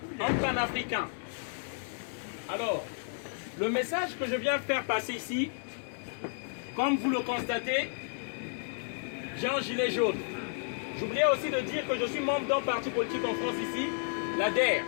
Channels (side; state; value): right; silent; digital silence